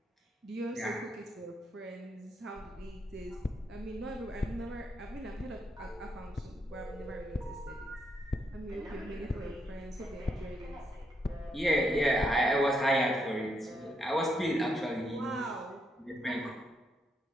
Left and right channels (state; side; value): normal; both; correlation 0.78